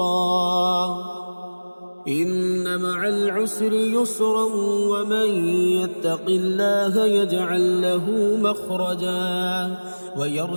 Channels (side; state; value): both; inverted; correlation -1.00